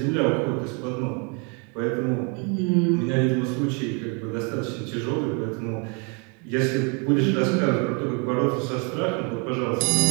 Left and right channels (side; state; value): left; quieter; 34.9 dB